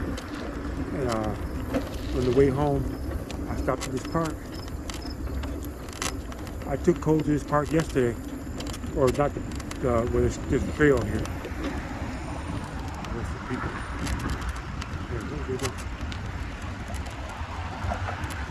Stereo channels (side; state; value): both; identical; correlation 1.00